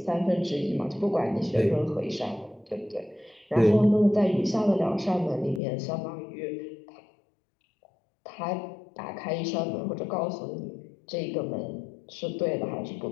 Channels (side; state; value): right; drops out; at 5.6 s